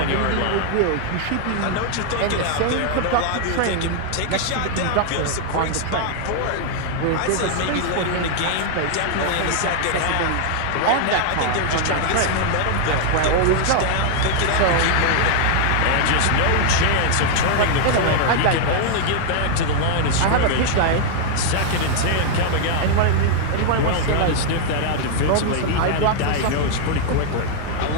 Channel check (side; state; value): both; different; correlation 0.00